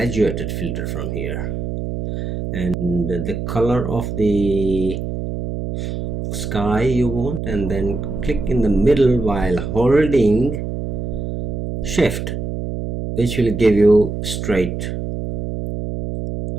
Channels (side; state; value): right; noise; hum, 4 dB below the sound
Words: filter from here, and the color of the sky you want, and then click in the middle while holding shift, which will give you straight.